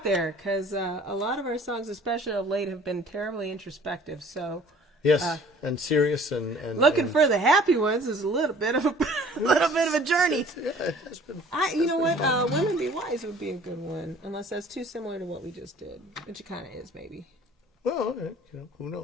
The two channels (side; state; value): both; normal; correlation 0.51